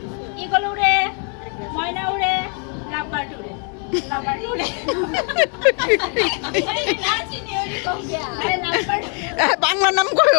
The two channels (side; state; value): right; quieter; 39.8 dB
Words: ঈগল উড়ে, ময়না উড়ে, লাভবার্ড উড়ে, লাভবার্ড উড়ে। বাংলা নাম